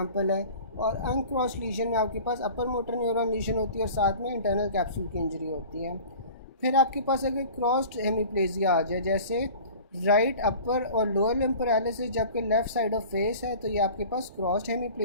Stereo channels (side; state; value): both; inverted; correlation -0.41